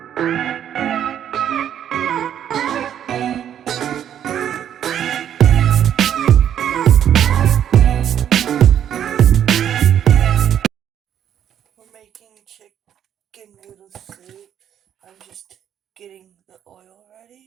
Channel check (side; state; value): left; quieter; 9.8 dB